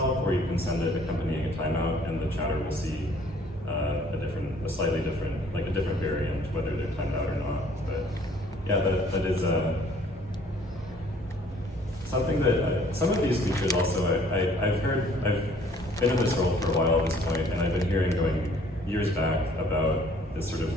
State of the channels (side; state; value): both; normal; correlation 0.58